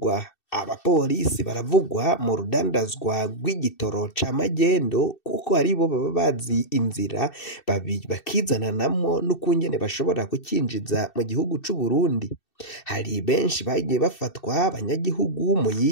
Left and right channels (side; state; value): right; late; 2.6 ms